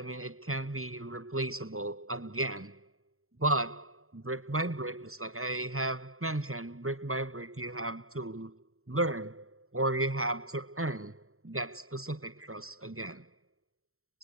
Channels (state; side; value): late; left; 0.63 ms